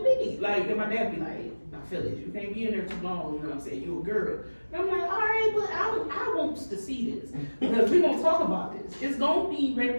beat. Like, and my dad be like, now fellas, you can't be in there too long, you know what I'm saying? You a girl. And I'm like, all right, but I want to see this. Because we're gonna talk about this. It's gonna be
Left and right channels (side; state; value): both; inverted; correlation -1.00